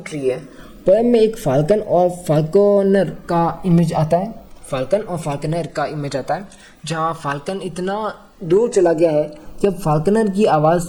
रही है। पोएम में एक फाल्कन और फाल्कोनर का इमेज आता है। फाल्कन और फाल्कनर का इमेज आता है। जहाँ फाल्कन इतना दूर चला गया है कि अब फाल्कनर की आवाज़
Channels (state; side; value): identical; both; correlation 1.00